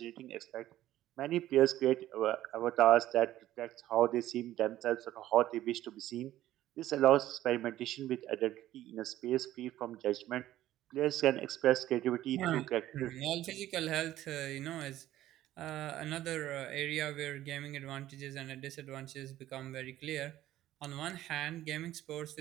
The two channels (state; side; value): quieter; left; 13.9 dB